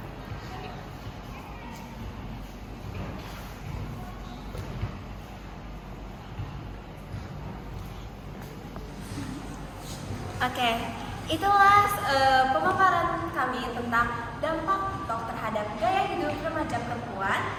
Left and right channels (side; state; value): both; identical; correlation 1.00